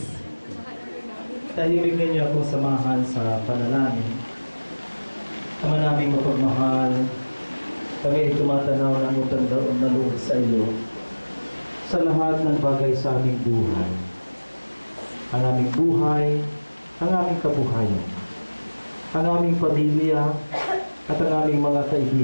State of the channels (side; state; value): both; inverted; correlation -1.00